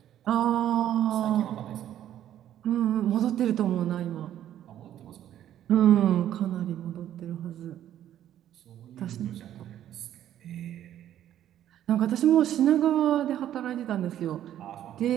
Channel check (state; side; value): quieter; left; 11.5 dB